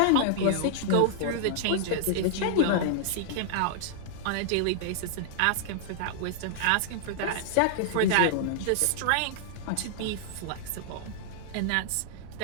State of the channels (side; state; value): both; different; correlation -0.01